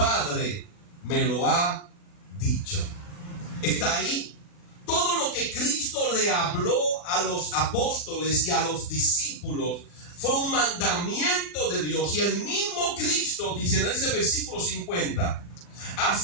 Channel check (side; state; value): right; late; 40 ms